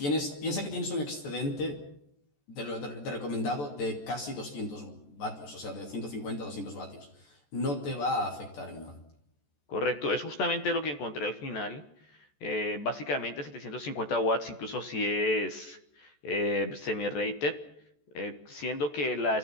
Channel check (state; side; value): late; right; 14 ms